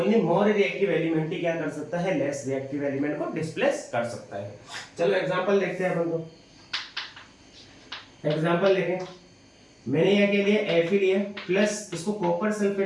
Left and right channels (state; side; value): identical; both; correlation 1.00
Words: मोर रिएक्टिव एलिमेंट ही क्या कर सकता है, लेस रिएक्टिव एलिमेंट को डिस्प्लेस कर सकता है। चलो एग्जांपल देखते हैं अपन को। एग्जांपल देखें, मैंने यहाँ के लिए Fe लिया प्लस इसको कॉपर